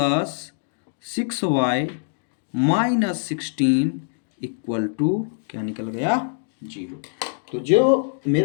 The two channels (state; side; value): silent; right; digital silence